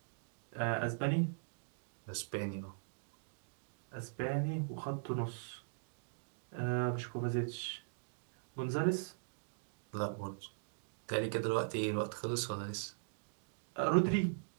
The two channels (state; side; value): silent; left; digital silence